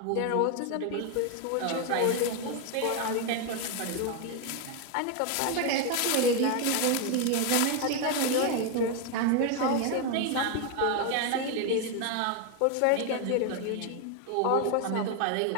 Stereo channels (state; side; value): different; both; correlation 0.01